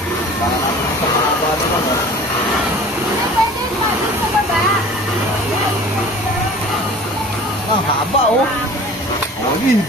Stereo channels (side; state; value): both; normal; correlation 0.43